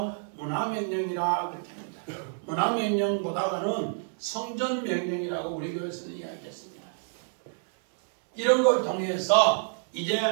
문화명령이라 그렇게 합니다. 문화명령보다는 성전명령이라고 우리 교회에서는 이야기했습니다. 이런 걸 통해서 이제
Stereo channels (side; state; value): left; silent; digital silence